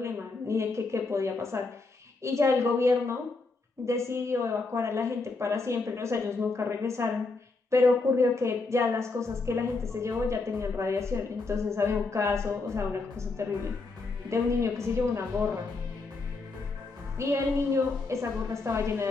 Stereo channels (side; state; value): right; quieter; 3.8 dB